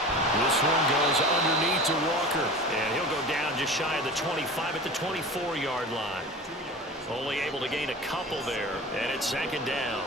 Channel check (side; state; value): both; normal; correlation 0.35